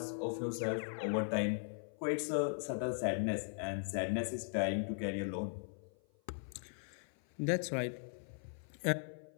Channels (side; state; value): right; silent; 52 dB below the other